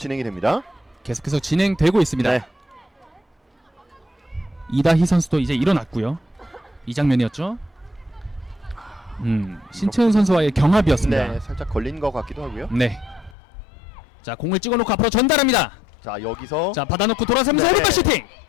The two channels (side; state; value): right; drops out; at 13.4 s